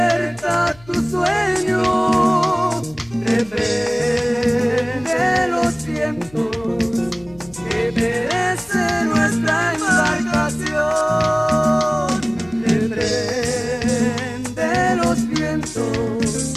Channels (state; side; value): noise; left; hum, 24 dB below the sound